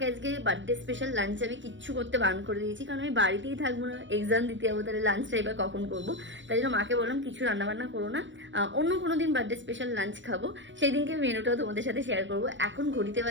আজকে বার্থডে স্পেশাল লাঞ্চ আমি কিচ্ছু করতে বারণ করে দিয়েছি, কারণ আমি বাড়িতেই থাকবো না, এক্সাম দিতে যাবো, তাহলে লাঞ্চটা এবার কখন করবো। তাই জন্য মাকে বললাম কিছু রান্নাবান্না করো না, অন্য কোনো দিন বার্থডে স্পেশাল লাঞ্চ খাবো, সেই দিনকে মেনুটাও তোমাদের সাথে শেয়ার করবো। এখন ঘড়িতে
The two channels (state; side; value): late; left; 0.54 ms